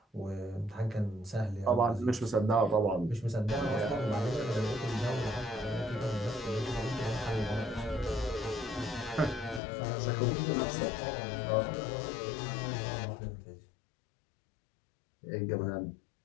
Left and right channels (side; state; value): right; drops out; at 9.6 s